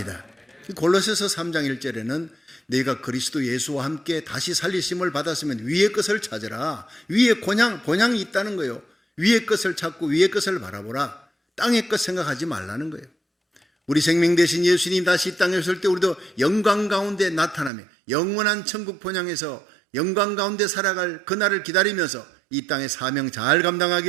골로새서 3장 1절에는 내가 그리스도 예수와 함께 다시 살리심을 받았으면 위의 것을 찾으라. 위에 본향이 있다는 거예요. 위의 것을 찾고 위의 것을 바라보라. 땅의 것 생각하지 말라는 거예요. 우리 생명 되신 예수님 다시 이 땅에 오실 때 우리도 영광 가운데 나타나며 영원한 천국 본향에서 영광 가운데 살아갈 그날을 기다리면서 이 땅의 사명 잘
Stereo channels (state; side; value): drops out; left; at 17.7 s